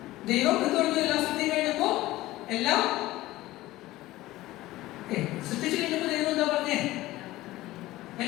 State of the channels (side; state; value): right; quieter; 17.1 dB